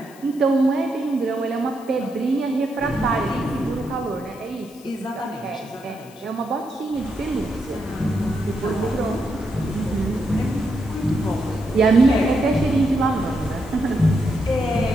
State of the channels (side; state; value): left; noise; hiss, 24 dB below the sound